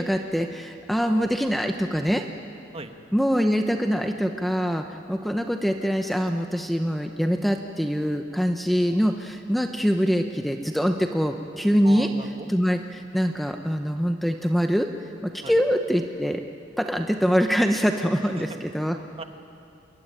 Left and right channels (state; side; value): normal; both; correlation 0.95